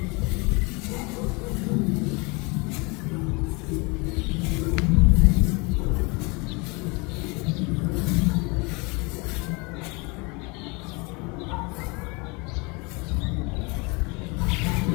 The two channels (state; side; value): quieter; right; 28.4 dB